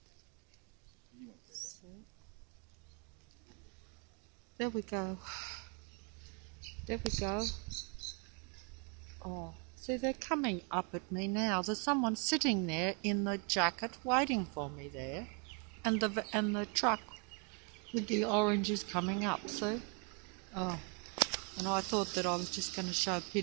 So, there we go. There we go. Oh. See, they're coming up at me now. There's someone sitting there in the jacket waiting for me there. And the truck with the oranges coming up, see? Oh, and I thought that I was just going to show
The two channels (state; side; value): quieter; left; 36.0 dB